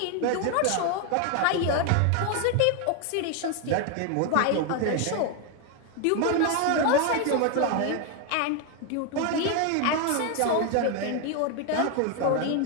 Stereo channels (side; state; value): both; different; correlation 0.01